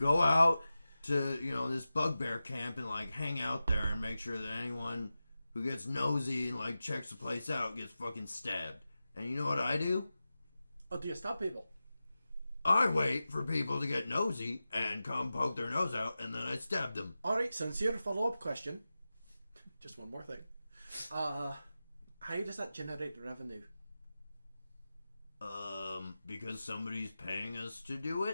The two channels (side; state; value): both; inverted; correlation -0.94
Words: out to, this bugbear camp and, like, hang out there and make sure that anyone who gets nosy and, like, checks the place out gets fucking stabbed. And you know what I do? Oh, do you stop people? I wait for people to get nosy and come poke their nose out, and then I stab them. Alright, sincere follow-up question. Just one more thing. How does that generate revenue? Because somebody's paying us to do